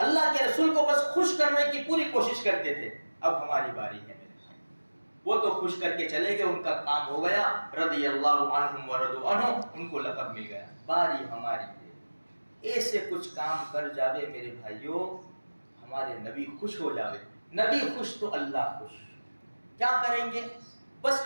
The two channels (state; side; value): inverted; both; correlation -1.00